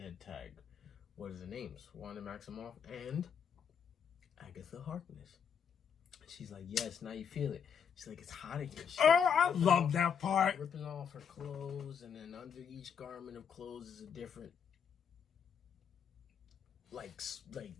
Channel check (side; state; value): right; quieter; 7.3 dB